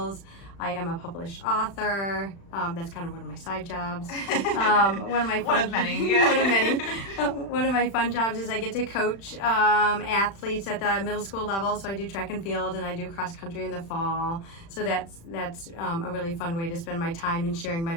I am a published author. That's kind of one of my side jobs. One of my fun, One of many. Yeah. one of many. One of my fun jobs is I get to coach athletes at the middle school level. So I do track and field, and I do cross country in the fall. So that's a really fun way to spend my time and sharing my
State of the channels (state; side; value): late; right; 36 ms